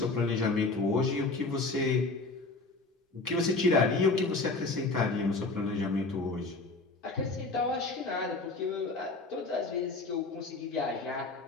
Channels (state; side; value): quieter; right; 3.5 dB